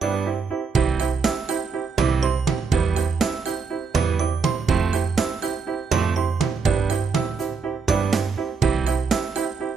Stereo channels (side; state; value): left; quieter; 5.1 dB